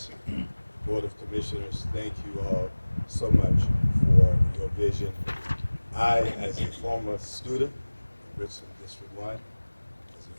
Board of Commissioners, thank you all so much for your vision. I, as a former student of Richland District 1, as a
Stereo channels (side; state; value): both; inverted; correlation -1.00